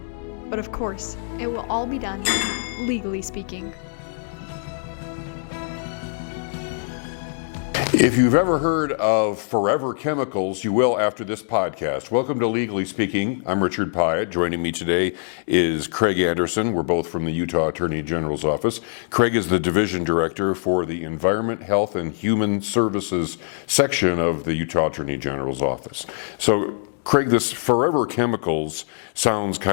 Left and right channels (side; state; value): right; silent; digital silence